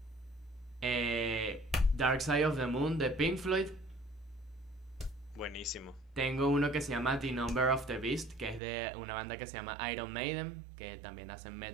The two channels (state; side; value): drops out; left; at 8.6 s